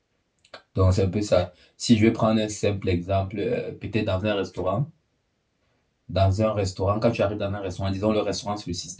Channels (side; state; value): both; identical; correlation 1.00